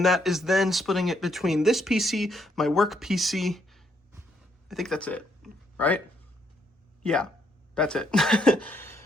that is then splitting it between this PC, my work PC. I think that's it, right? Yeah, that's it.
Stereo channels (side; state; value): both; normal; correlation 0.73